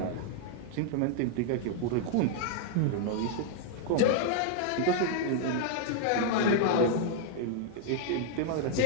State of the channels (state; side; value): different; both; correlation -0.01